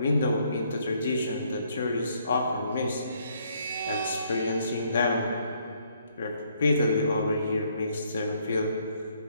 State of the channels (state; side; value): inverted; both; correlation -0.68